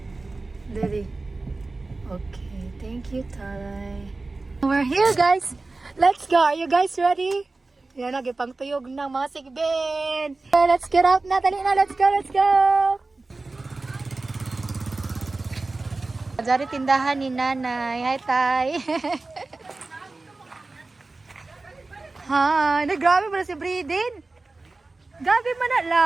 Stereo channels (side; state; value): left; quieter; 3.4 dB